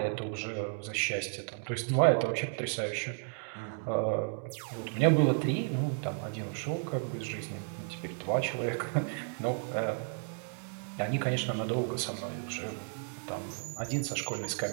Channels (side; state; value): left; silent; 56 dB below the other